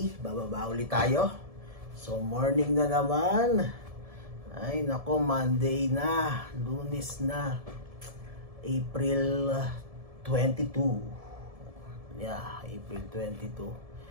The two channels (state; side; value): late; left; 1.7 ms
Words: bababa ulit tayo. So, morning na naman. Ay, nako, Monday na, Lunes na, April 22. Yeah, April 22.